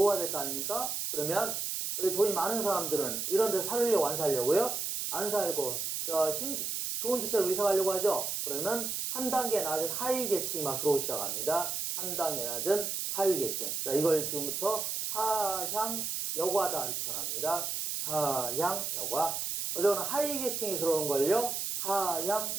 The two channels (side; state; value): right; noise; hiss, 2 dB below the sound